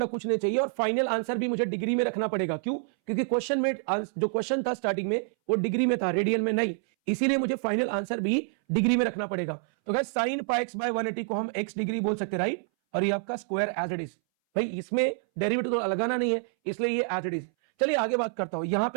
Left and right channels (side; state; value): left; silent; 60 dB below the other